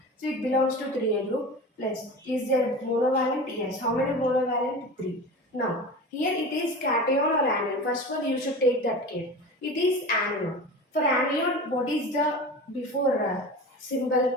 So it belongs to 3A group. Plus, is there monovalent? Yes. How many monovalent? 3. Now, here it is cation or anion. First of all, you should take that care. It is anion. For anion, what is the before symbol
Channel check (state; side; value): normal; both; correlation 0.32